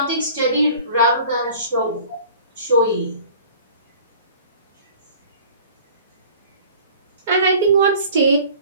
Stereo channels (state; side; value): inverted; both; correlation -0.46